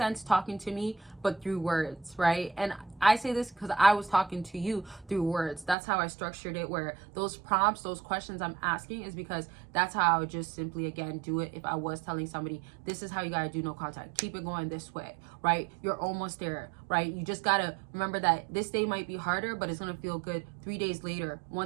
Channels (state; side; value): drops out; left; at 5.8 s